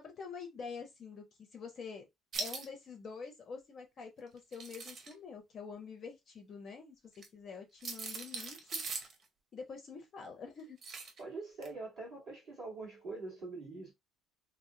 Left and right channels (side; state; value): both; normal; correlation 0.66